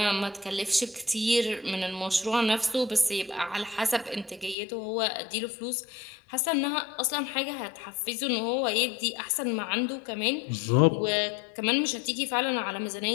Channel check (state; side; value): drops out; right; at 4.5 s